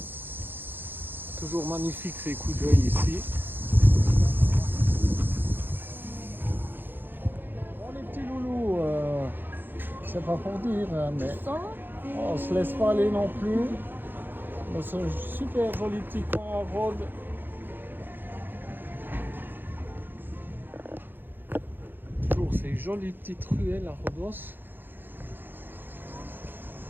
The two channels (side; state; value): left; late; 0.096 ms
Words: Toujours magnifique ces coups d'œil ici. Bon les petits loulous, c'est pas pour dire, hein, mais on se laisse pas aller non plus. Dans ce super joli petit coin à Rhodes. Toujours ces jolies petites ruelles à Rhodos.